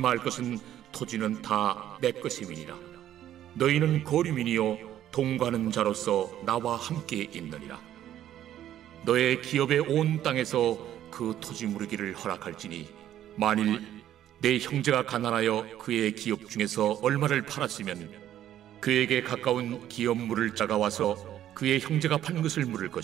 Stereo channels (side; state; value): left; quieter; 11.7 dB